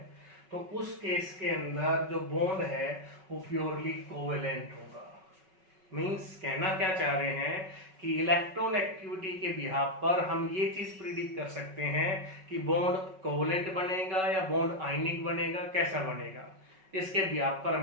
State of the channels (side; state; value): left; late; 5.3 ms